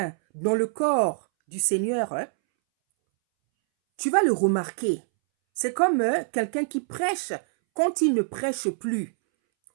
dans le corps du Seigneur, tu vas le remarquer. C'est comme quelqu'un qui prêche quand il ne prêche plus.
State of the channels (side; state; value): left; silent; 62 dB below the other